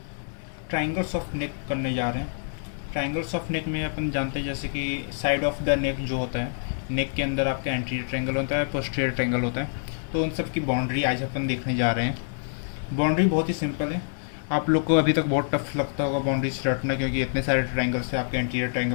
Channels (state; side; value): silent; right; 61 dB below the other